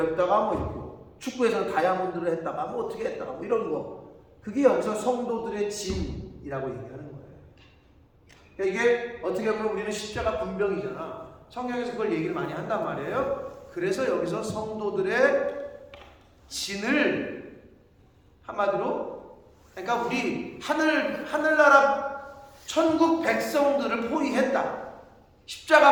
뭐 이렇게 축구에서는 다이아몬드를 했다가 뭐 어떻게 했다가 뭐 이런 거. 그게 여기서 성도들의 진이라고 얘기하는 거예요. 그러니까 이게 어떻게 보면 우리는 십자가 군병이잖아. 성경에서 그걸 얘기를 많이 한단 말이에요. 그래서 여기서 성도들의 진을 한마디로 그러니까 우리 하늘나라 천국 백성들을 포위했다.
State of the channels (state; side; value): identical; both; correlation 1.00